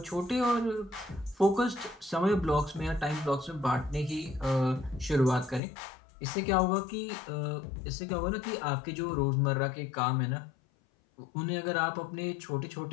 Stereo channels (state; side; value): drops out; right; at 5.6 s